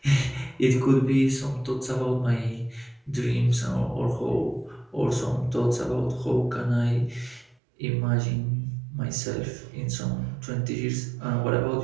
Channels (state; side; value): drops out; left; at 7.6 s